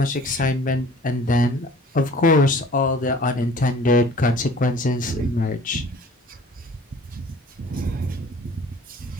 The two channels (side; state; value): both; normal; correlation 0.48